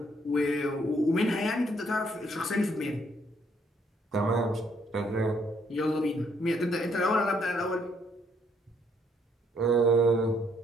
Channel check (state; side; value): normal; both; correlation 0.69